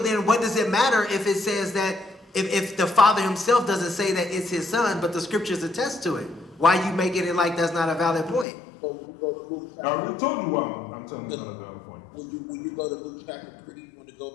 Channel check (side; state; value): right; drops out; at 8.5 s